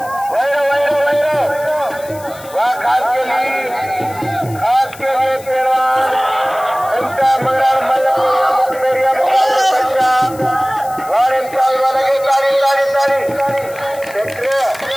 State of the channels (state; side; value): noise; left; hiss, 19 dB below the sound